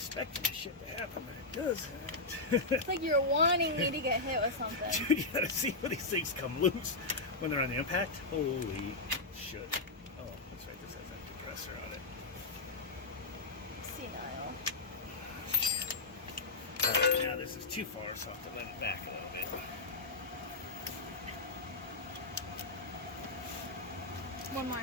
this shit to happen, but it doesn't. It's like you're wanting me to get hit with something. Dude, you gotta see when these things come loose when they're on the impact. Holy shit. Oh, that's right. This has that depressor on it. Senile. Alright, now this is too far, so I'll have to let it back a little bit. One more.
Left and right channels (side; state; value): right; quieter; 3.3 dB